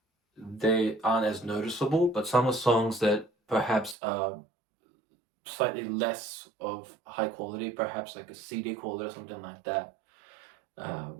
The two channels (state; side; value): drops out; left; at 4.0 s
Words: they aren't as noticeable, but some of the songs that perhaps are slightly less of high quality, perhaps like a CD quality or something like that,